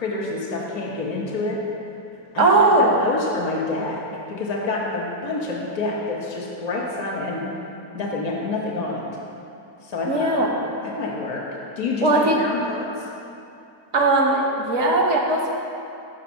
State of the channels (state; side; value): late; left; 2.5 ms